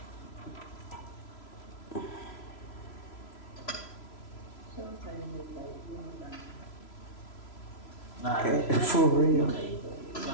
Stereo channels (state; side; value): late; right; 3.0 ms